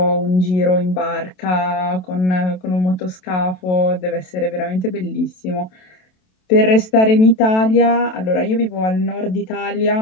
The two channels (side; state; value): right; late; 27 ms